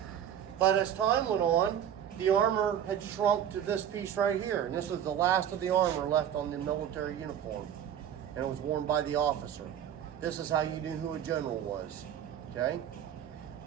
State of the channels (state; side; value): quieter; left; 9.6 dB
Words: But as time went on, the armor had shrunk to this piece right here. And this was the last of the armor left on the military uniform. And it was worn by the officer. This is how you knew who a general was, okay?